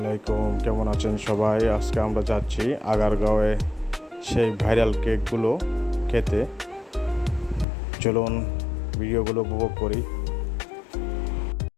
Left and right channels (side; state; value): right; drops out; at 7.7 s